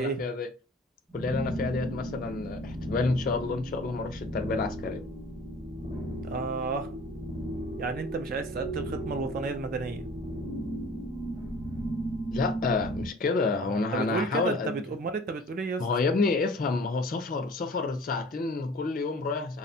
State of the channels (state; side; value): normal; both; correlation 0.47